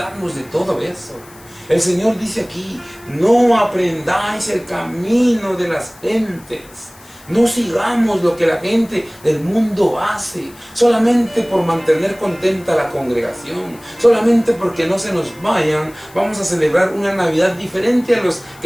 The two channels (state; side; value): noise; left; hiss, 24 dB below the sound